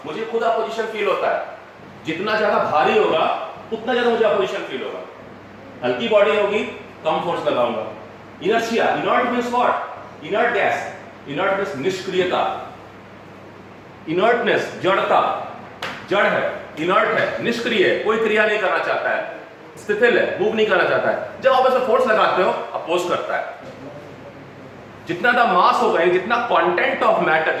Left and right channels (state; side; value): identical; both; correlation 1.00